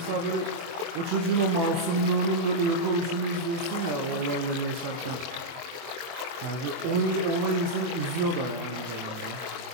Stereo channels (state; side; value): late; left; 24 ms